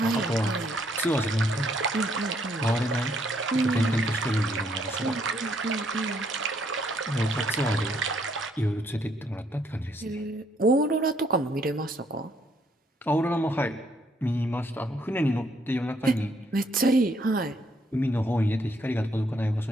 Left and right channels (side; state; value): both; normal; correlation 0.70